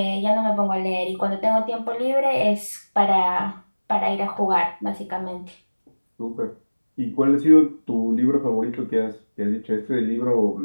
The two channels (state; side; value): inverted; both; correlation -1.00